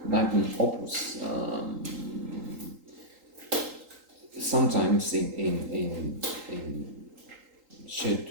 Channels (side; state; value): left; late; 3.8 ms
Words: magnum opus, sometimes in chef